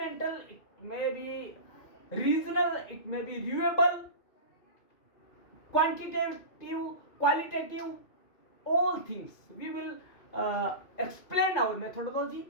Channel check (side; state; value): right; late; 2.4 ms